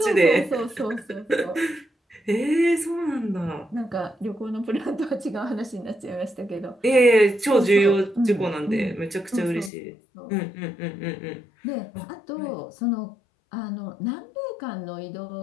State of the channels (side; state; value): right; drops out; at 9.7 s